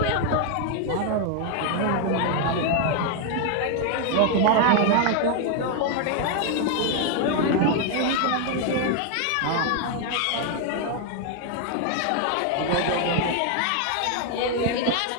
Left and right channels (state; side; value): different; both; correlation 0.00